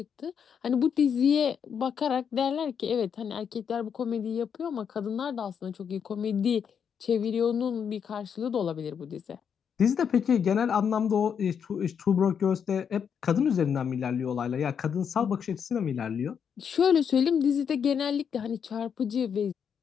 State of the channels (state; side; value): quieter; right; 7.4 dB